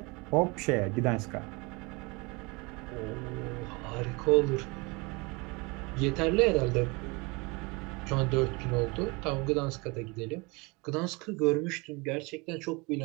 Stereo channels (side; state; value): left; quieter; 27.1 dB